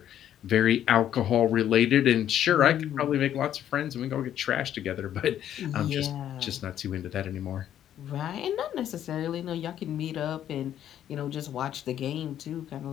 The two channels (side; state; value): right; quieter; 10.8 dB